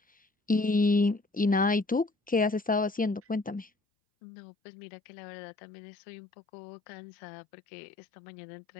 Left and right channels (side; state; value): right; drops out; at 3.7 s